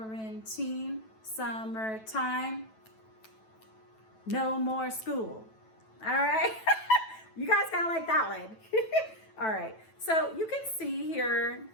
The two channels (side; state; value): right; late; 9.1 ms